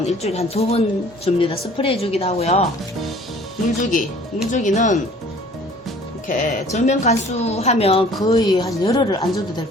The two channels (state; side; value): normal; both; correlation 0.51